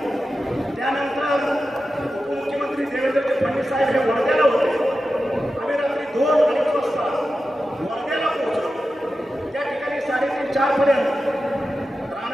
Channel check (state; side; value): normal; both; correlation 0.92